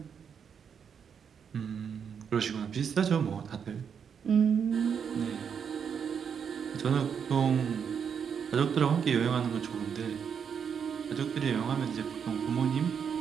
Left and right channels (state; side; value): quieter; left; 7.2 dB